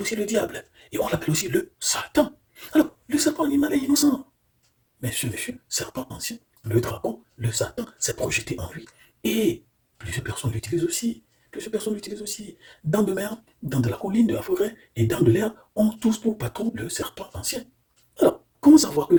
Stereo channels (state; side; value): identical; both; correlation 1.00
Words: aussi le diable. Et on l'appelle aussi le Satan. Alors, le serpent animal est innocent. Mais ce monsieur, serpent ancien, le dragon, le Satan, s'est projeté en lui. Et plusieurs personnes l'utilisent aussi. Plusieurs personnes l'utilisent aussi. Dans de mer, dans de la colline, de la forêt et dans de l'air, on tous pour patron le serpent ancien. Alors, comment savoir que